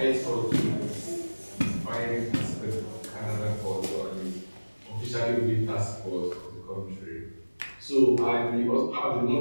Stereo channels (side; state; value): both; inverted; correlation -1.00